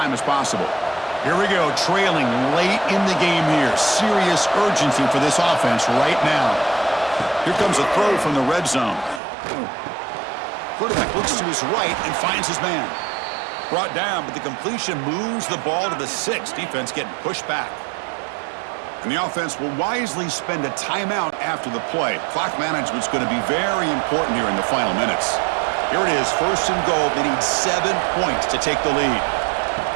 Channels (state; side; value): drops out; left; at 9.2 s